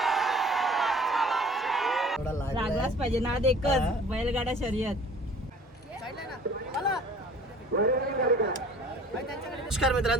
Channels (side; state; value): both; normal; correlation 0.49